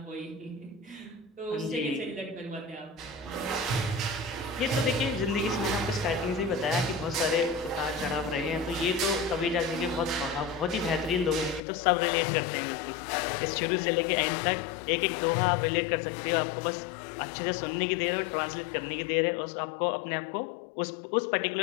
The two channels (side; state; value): right; drops out; at 11.6 s